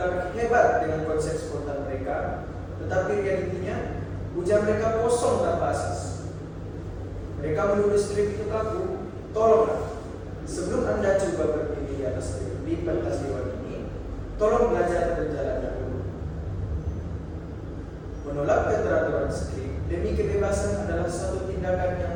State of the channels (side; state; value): both; identical; correlation 1.00